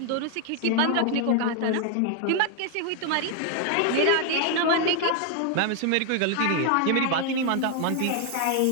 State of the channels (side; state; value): both; different; correlation 0.00